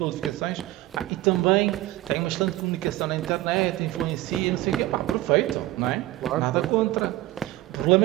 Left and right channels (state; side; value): quieter; left; 16.6 dB